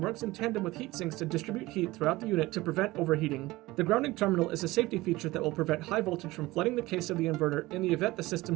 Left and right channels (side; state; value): left; quieter; 19.3 dB